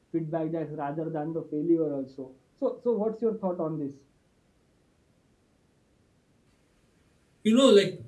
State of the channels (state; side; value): identical; both; correlation 1.00